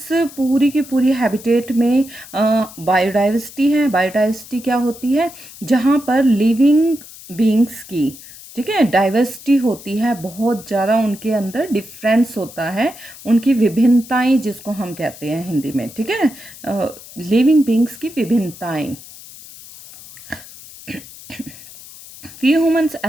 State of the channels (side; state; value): left; noise; hiss, 18 dB below the sound